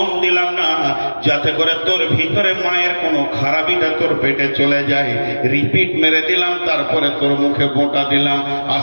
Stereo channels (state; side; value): inverted; both; correlation -1.00